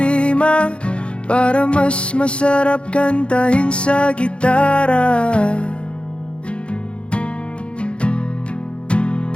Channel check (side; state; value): right; late; 0.058 ms